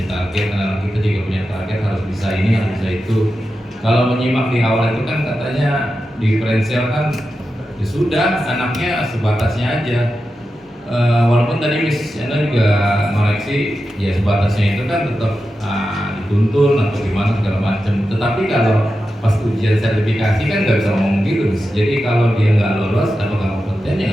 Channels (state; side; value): normal; both; correlation 0.90